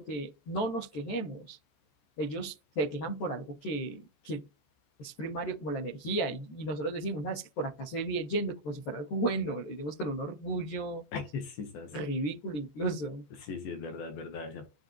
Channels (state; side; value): late; right; 14 ms